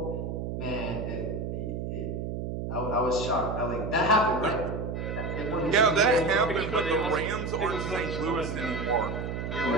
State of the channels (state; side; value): noise; right; hum, 4 dB below the sound